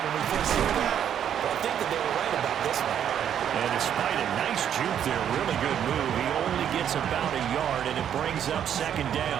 when we first hear that. But I think that they were right about this one. And despite a nice juke there, really good move, he only gets about a yard, and it brings up 2nd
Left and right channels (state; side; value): quieter; left; 9.3 dB